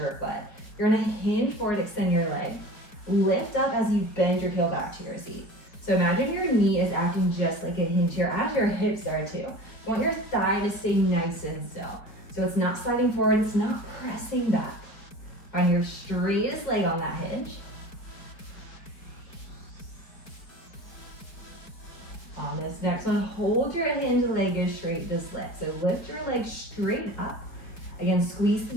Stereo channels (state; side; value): late; right; 4.8 ms